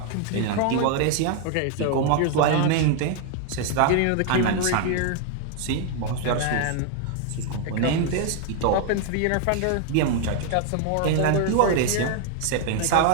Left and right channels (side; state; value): both; different; correlation 0.00